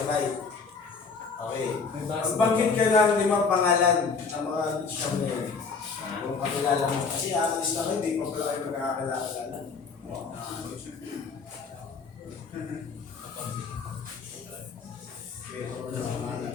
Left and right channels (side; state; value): right; quieter; 5.0 dB